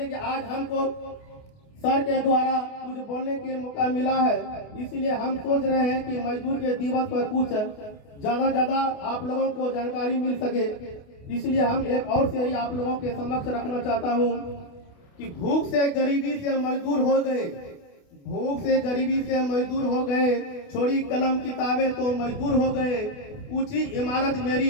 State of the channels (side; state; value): right; late; 28 ms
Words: कि आज हमको सर के द्वारा कुछ बोलने के मौका मिला है, इसलिए हम सोच रहे हैं कि मजदूर के दिवस पर कुछ ज्यादा आप लोगों को जानकारी मिल सके। इसलिए हम एक और शायरी आप लोगों के समक्ष रखना चाहता हूँ कि भूख से गरीबी से मजदूर हो गए, भूख से गरीबी से मजदूर हो गए, छोड़ी कलम किताबें तो मजदूर हो गए। ऊंची इमारत